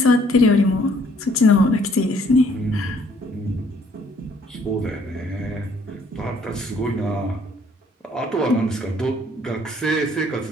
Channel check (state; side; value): normal; both; correlation 0.62